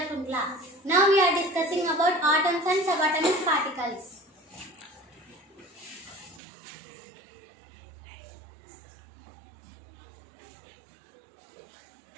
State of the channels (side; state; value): left; drops out; at 6.4 s